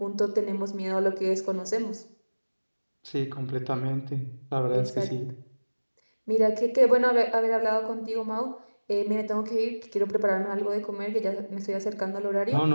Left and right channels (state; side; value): inverted; both; correlation -1.00